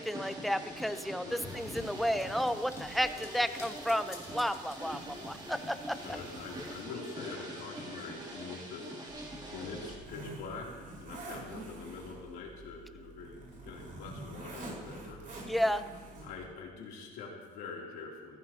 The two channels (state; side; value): normal; both; correlation 0.83